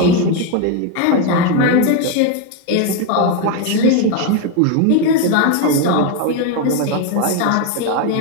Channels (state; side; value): different; both; correlation 0.02